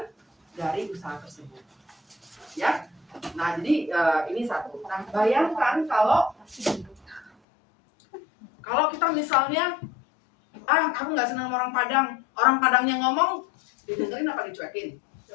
dari usaha tersebut. Ya, nah jadi ini satu. Nah bayangkan kalau kita misalnya, aku nggak senang sama orang Padangnya ngomong, didengerin apa dicuekin?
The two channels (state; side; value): drops out; right; at 7.3 s